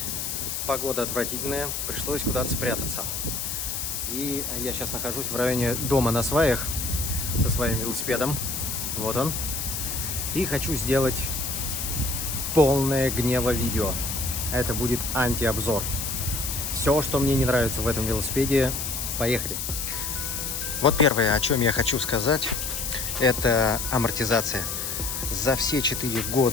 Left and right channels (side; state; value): left; noise; hiss, 3 dB below the sound